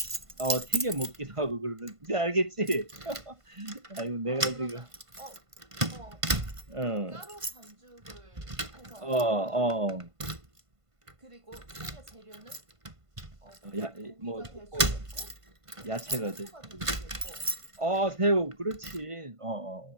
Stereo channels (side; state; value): left; late; 1.5 ms